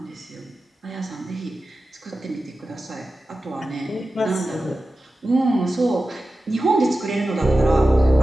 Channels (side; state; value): both; normal; correlation 0.94